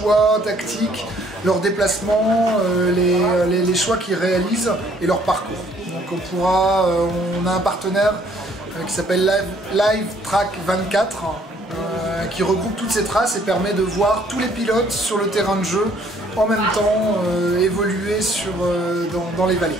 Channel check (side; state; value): both; normal; correlation 0.62